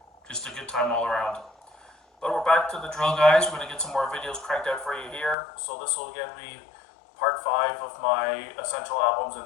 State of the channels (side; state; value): right; drops out; at 5.4 s